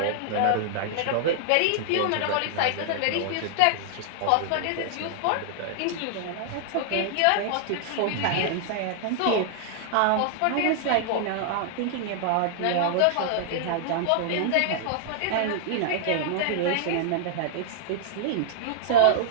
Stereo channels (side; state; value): both; different; correlation -0.01